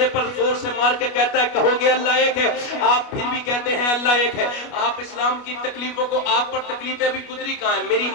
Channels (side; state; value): right; late; 29 ms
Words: پر زور سے مار کے کہتا ہے کہو گے اللہ ایک ہے؟ آپ پھر بھی کہتے ہیں اللہ ایک ہے۔ آپ اسلام کی تکلیفوں کو، آپ پر تکلیفیں بھی گزری کہاں ہیں؟ میری